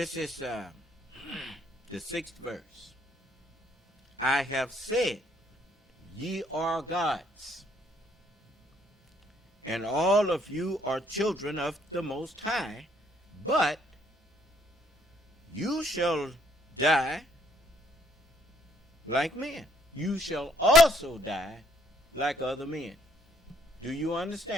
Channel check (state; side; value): normal; both; correlation 0.66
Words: is the 6th verse. I have said, ye are gods, and all of you are children of the Most High, but you shall die like men. You shall also die like other men. Do you